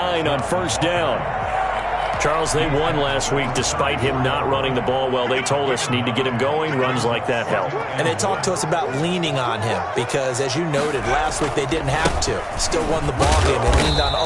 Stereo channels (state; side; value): identical; both; correlation 1.00